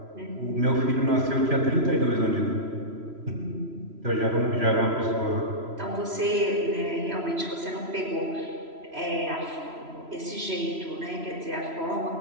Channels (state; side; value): late; left; 3.0 ms